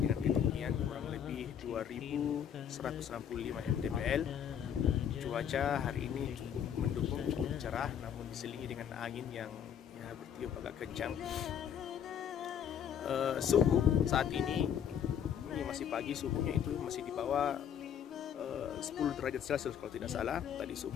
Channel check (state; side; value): quieter; right; 8.8 dB